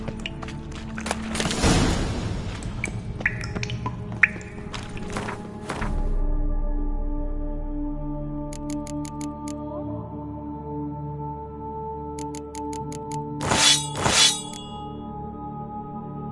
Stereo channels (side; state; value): both; identical; correlation 1.00